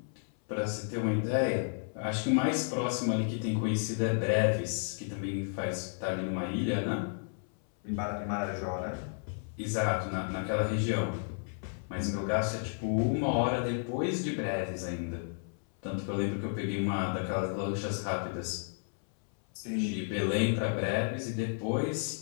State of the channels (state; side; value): silent; right; 56 dB below the other